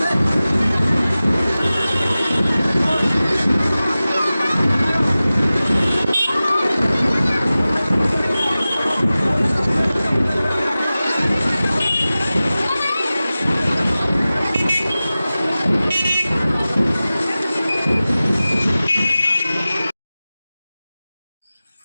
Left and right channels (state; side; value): inverted; both; correlation -0.96